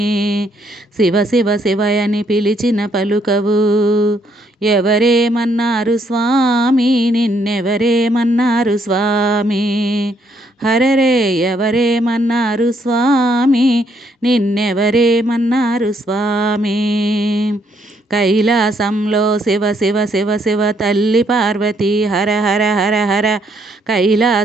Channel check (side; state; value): both; normal; correlation 0.71